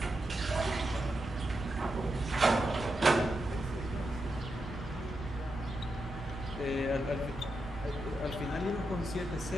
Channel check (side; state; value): both; normal; correlation 0.86